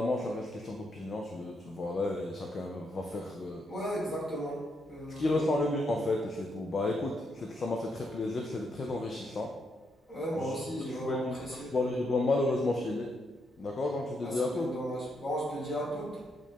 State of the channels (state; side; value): normal; both; correlation 0.79